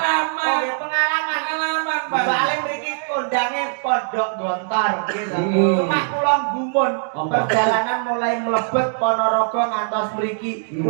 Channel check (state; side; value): silent; left; digital silence